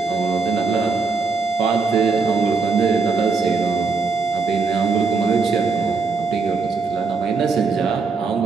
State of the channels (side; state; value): left; quieter; 4.4 dB